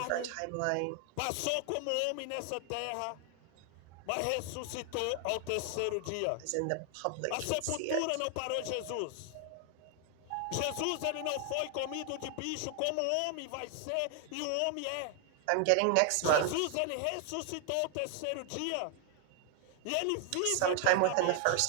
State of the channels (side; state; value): both; different; correlation 0.00